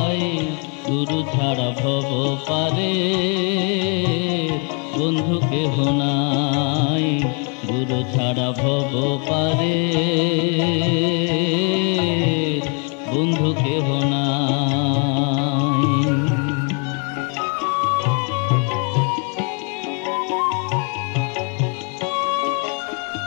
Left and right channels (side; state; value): right; quieter; 37.1 dB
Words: গুরু ছাড়া ভব পারে বন্ধু কেহ নাই, গুরু ছাড়া ভব পারে বন্ধু কেহ নাই।